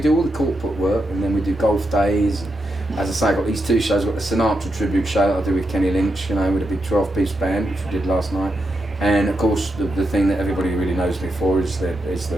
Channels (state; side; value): normal; both; correlation 0.85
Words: do all the corporate work, and then we do golf days. As I say, I've got these two shows. I've got the Sinatra tribute show that I do with Kenny Lynch, you know, with a big 12-piece band, which we did last night. And of course, the thing that everybody really knows me for is the